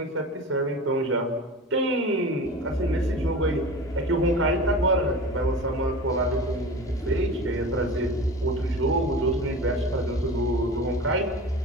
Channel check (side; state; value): both; normal; correlation 0.34